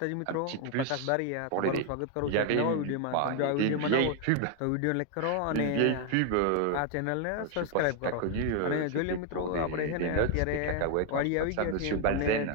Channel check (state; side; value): different; both; correlation 0.01